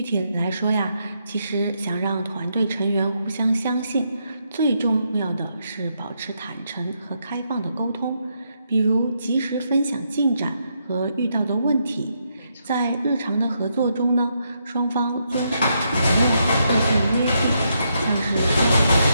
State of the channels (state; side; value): inverted; both; correlation -0.79